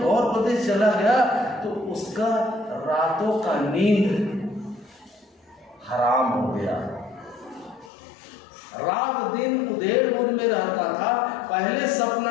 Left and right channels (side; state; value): right; drops out; at 7.9 s